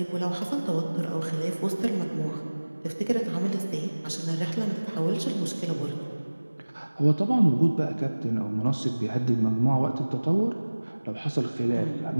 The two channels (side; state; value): both; inverted; correlation -1.00